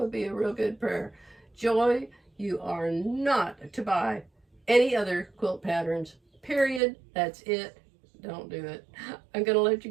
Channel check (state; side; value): drops out; left; at 6.8 s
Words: be a real good prayer. Joy, you are not to buy any other quilt patterns. Period. That's it. Don't do it. I'm going to let you